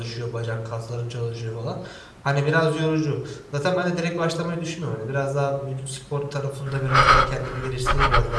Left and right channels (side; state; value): both; identical; correlation 1.00